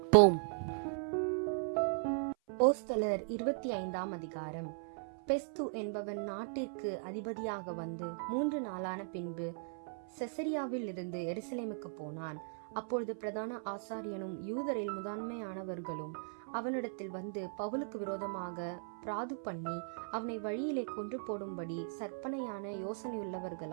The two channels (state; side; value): silent; left; 52 dB below the other